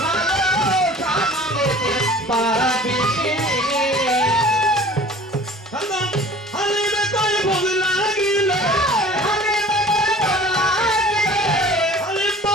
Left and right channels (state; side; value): normal; both; correlation 0.46